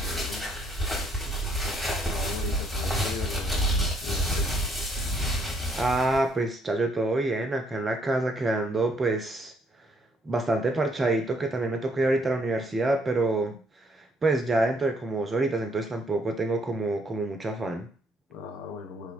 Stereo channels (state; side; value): normal; both; correlation 0.68